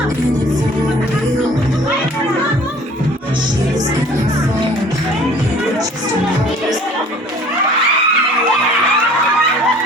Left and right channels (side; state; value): both; normal; correlation 0.50